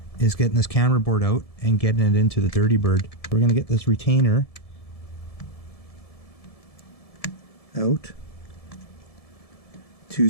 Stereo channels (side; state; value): right; late; 1.7 ms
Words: is getting this camera board out and getting it into the Dirty Bird. We're going to get this retainer out.